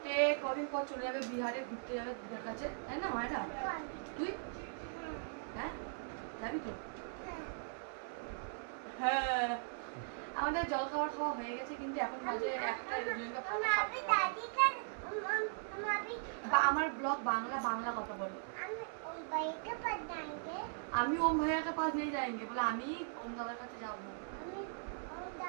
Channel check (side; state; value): left; silent; 52 dB below the other